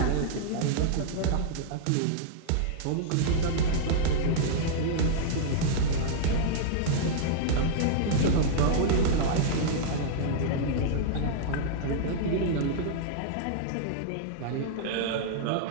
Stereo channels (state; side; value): different; both; correlation -0.02